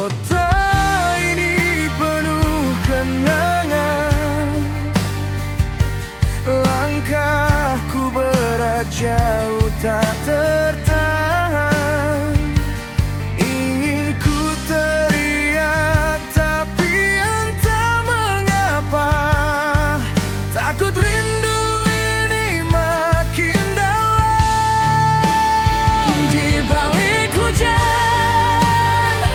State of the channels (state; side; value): identical; both; correlation 1.00